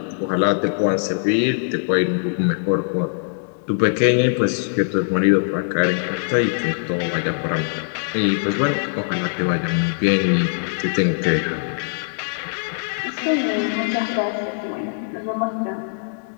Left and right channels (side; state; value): right; silent; digital silence